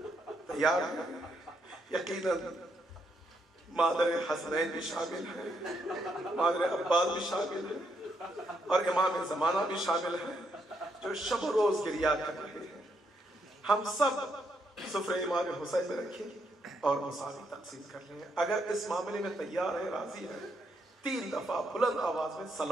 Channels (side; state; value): both; normal; correlation 0.77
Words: تیار ہیں؟ یقیناً مادر حسنین بھی شامل ہے، مادر عباس بھی شامل ہے، اور امام زمانہ بھی شامل ہے، جو شب و روز گریا کر رہے ہیں۔ ہم سب سفرے امام حسین میں رکھیں اور مساوی تقسیم کر لیں۔ اگر اس معاملے میں تیار ہے، راضی ہے، 3 دفعہ بلند آواز میں